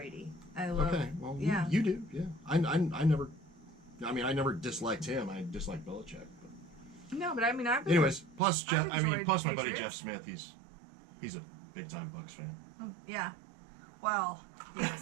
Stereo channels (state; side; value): drops out; left; at 8.4 s